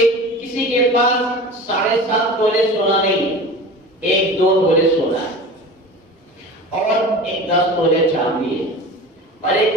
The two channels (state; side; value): normal; both; correlation 0.35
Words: کسی کے پاس 7.5 تولے سونا نہیں، 1-2 تولے سونا ہے اور 10 تولے چاندی ہے اور